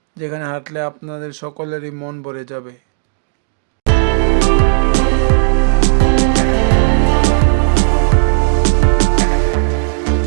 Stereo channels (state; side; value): silent; left; digital silence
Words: যেখানে হাঁটলে আপনাদের সকলেরই মন ভরে যাবে।